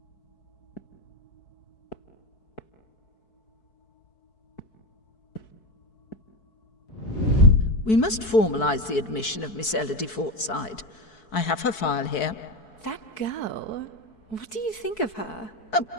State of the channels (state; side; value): late; right; 4.6 ms